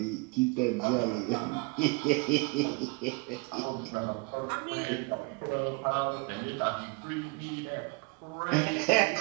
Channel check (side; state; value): left; quieter; 27.2 dB